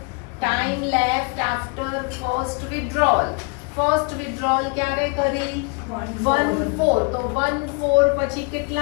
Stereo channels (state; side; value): quieter; right; 32.3 dB